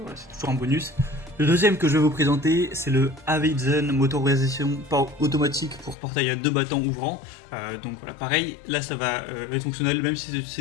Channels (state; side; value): drops out; right; at 6.0 s